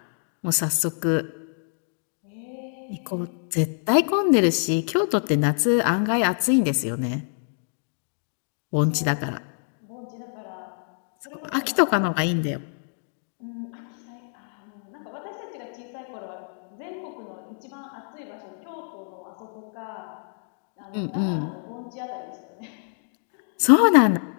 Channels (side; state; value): right; silent; digital silence